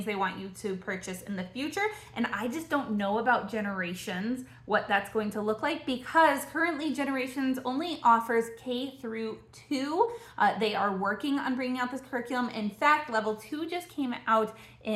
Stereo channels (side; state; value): both; identical; correlation 1.00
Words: they want you to purchase in the future, and I just don't know about Generations, what that's going to look like, because currently Generations only offers K through 2. They are working on bringing out this curriculum. In fact, level 2 just came out